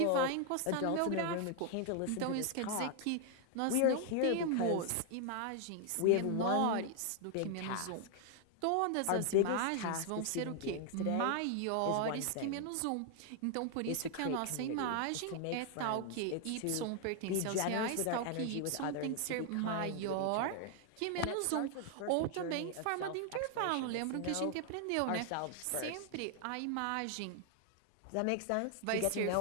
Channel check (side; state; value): both; different; correlation 0.00